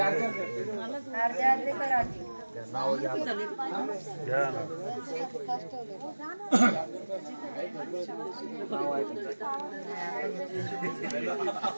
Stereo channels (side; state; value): both; inverted; correlation -1.00